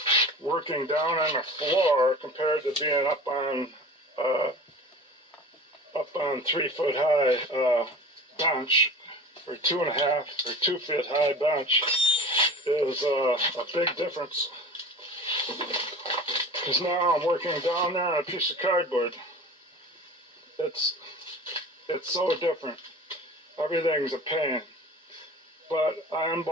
working down on the floor compared to being up on 3 foot high bench, or 2.5 or 2 feet high bench, is a big difference. Because now I'm working down there on a piece of cardboard. It's so different. Everything's a pain. But I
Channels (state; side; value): normal; both; correlation 0.38